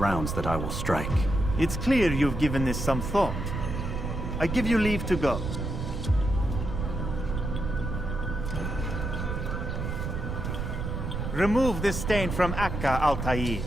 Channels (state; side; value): noise; right; rumble, 4 dB below the sound